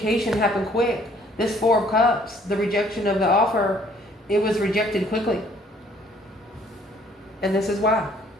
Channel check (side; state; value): both; normal; correlation 0.60